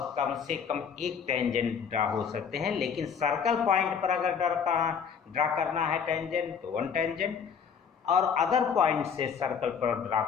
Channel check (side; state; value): right; quieter; 6.9 dB